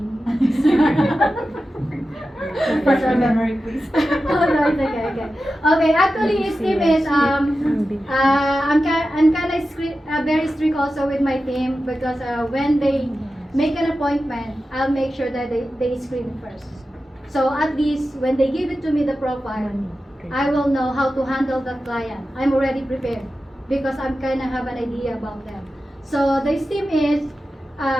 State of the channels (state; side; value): normal; both; correlation 0.93